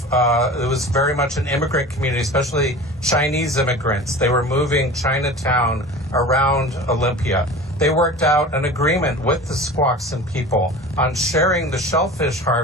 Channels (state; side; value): normal; both; correlation 0.36